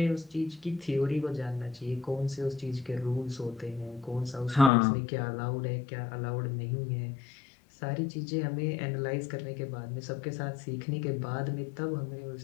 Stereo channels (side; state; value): right; drops out; at 4.7 s